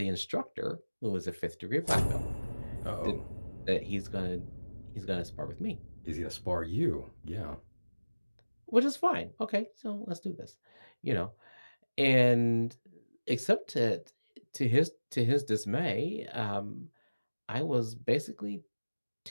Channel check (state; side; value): inverted; both; correlation -1.00